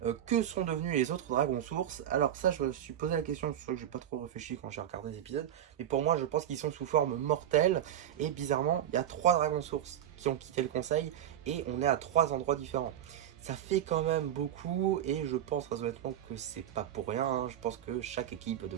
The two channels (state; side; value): quieter; left; 10.8 dB